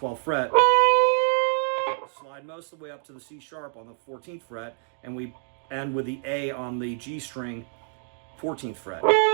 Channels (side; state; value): left; silent; digital silence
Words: fret, slide most of the way up to the C sharp on the 14th fret, and we end with the A on the G string, 14th fret.